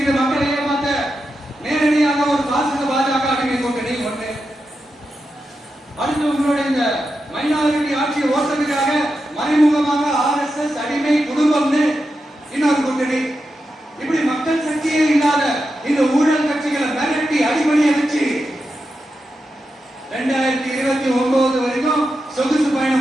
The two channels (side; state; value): both; normal; correlation 0.88